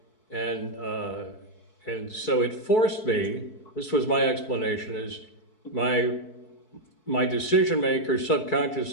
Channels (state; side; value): late; right; 4.6 ms